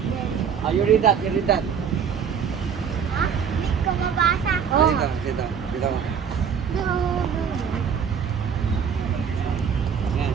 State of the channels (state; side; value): quieter; left; 7.2 dB